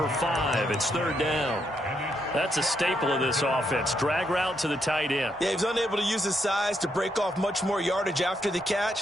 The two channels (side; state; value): both; normal; correlation 0.78